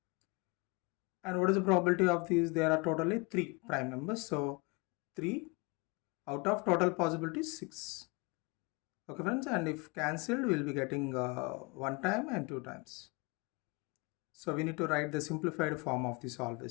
And what is the probability of these? There are totally 3 prime numbers. So 3 out of total possibilities 6. Okay friends, and if cancelled, we will be getting 1 time and 2 times. So we need to write the simplified form of this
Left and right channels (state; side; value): quieter; right; 28.0 dB